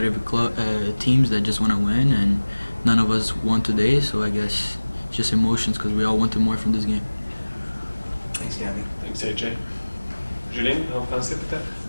teams that just want to win, and none of us won today, so I guess it's just emotions because we all wanted more from this game. Thanks, Gabby. Thanks, AJ. Julien, en français peut-être?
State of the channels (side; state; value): both; inverted; correlation -1.00